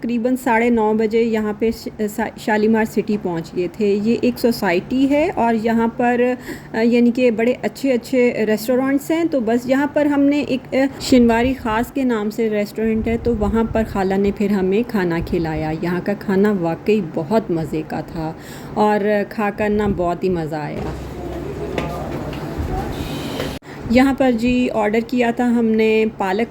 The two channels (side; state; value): both; identical; correlation 1.00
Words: 9:30 बजे यहाँ पे शालीमार सिटी पहुँच गए थे। ये एक सोसाइटी है और यहाँ पर यानी कि बड़े अच्छे अच्छे रेस्टोरेंट्स हैं। तो बस यहाँ पर हमने एक शिनवारी ख़ास के नाम से रेस्टोरेंट है, तो वहाँ पर खाला ने फिर हमें खाना खिलाया। यहाँ का खाना वाकई बहुत मज़े का था और खाकर ना बहुत ही मज़ा आया। यहाँ पर जी ऑर्डर किया था हमने पालक